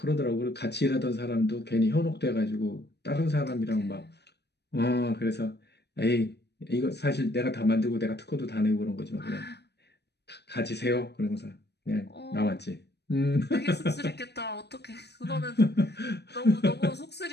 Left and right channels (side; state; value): right; late; 0.49 ms